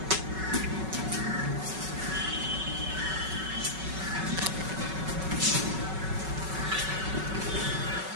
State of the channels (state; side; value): late; left; 5.3 ms